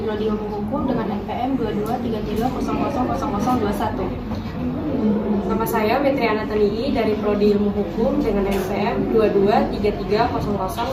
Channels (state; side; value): identical; both; correlation 1.00